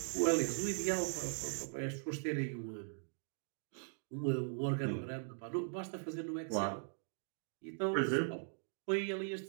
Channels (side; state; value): left; silent; digital silence